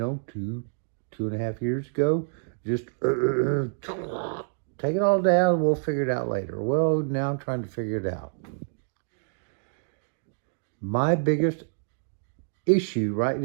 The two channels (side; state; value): left; silent; digital silence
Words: two and a half years ago, just take it all down and we'll figure it out later. Well, now I'm trying to figure it out. My biggest issue right